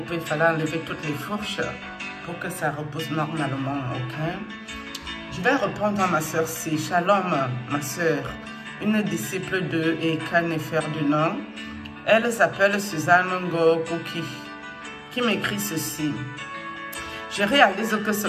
Il fallait enlever toutes les fourches pour que ça repose normalement, ok? Je vais répondre à ma soeur C. Shalom, ma soeur. Une disciple de Eka Nefer du Nord. Elle s'appelle Suzanne Ngokuki, qui m'écrit ceci. Je réalise que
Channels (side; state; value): both; identical; correlation 1.00